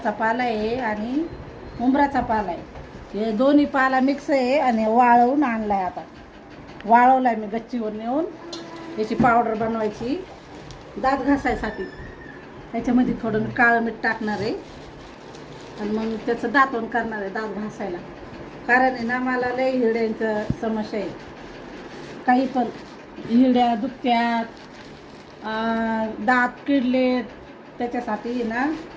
पाला आहे आणि उंबराचा पाला आहे. हे दोन्ही पाला मिक्स आहे आणि वाळवून आणलाय. आता वाळवलाय मी गच्चीवर नेऊन. याची पावडर बनवायची दात घासायसाठी. त्याच्यामध्ये थोडं काळं मीठ टाकणार आहे आणि मग त्याचं दातवण करणार आहे दात घासायला. कारण आहे ना, मला लय हिरड्यांचं समस्या आहे. काही पण हिरड्या दुखत्यात, दात किडलेत. त्याच्यासाठी ना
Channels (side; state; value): both; identical; correlation 1.00